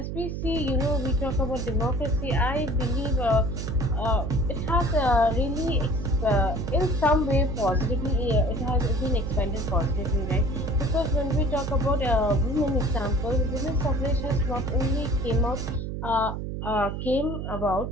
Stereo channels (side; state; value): right; noise; hum, 5 dB below the sound